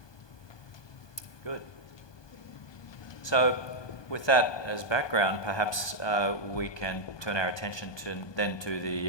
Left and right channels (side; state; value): right; late; 1.2 ms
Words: Good. So with that as background, perhaps we can turn our attention to